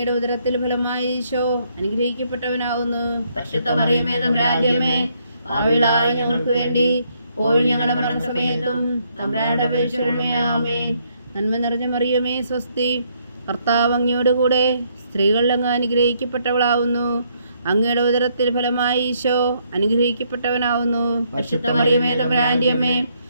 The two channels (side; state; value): both; inverted; correlation -0.72